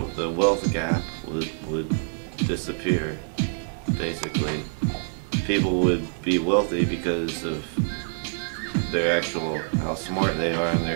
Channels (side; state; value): left; silent; digital silence